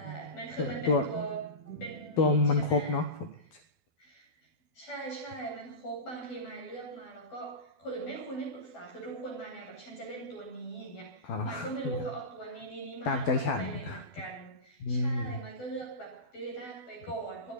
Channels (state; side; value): late; right; 12 ms